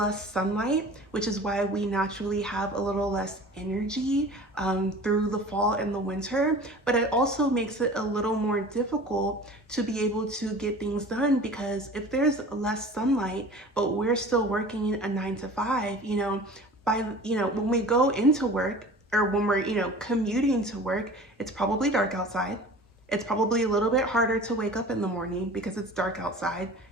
sunlight, which is why we naturally have a little less energy through the fall and the winter. But it also makes it a little more difficult to be able to get things done, because if there's less sunlight but we're still working a 9 to 5, when we go into work, or when we're commuting to work, it's probably dark outside. It's probably a little bit harder to wake up in the morning because it's dark outside.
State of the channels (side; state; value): both; normal; correlation 0.41